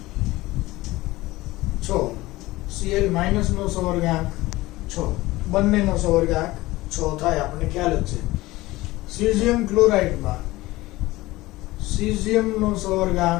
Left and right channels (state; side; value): quieter; right; 19.0 dB